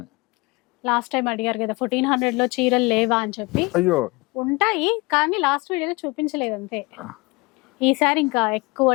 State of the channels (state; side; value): quieter; right; 25.4 dB